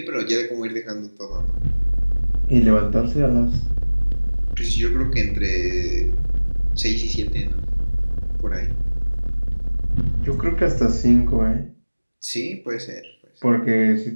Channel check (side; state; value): both; inverted; correlation -1.00